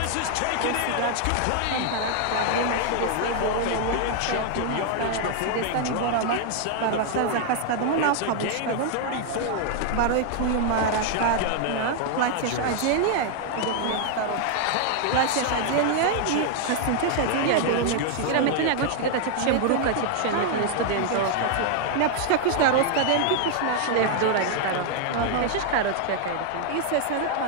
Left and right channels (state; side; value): different; both; correlation 0.00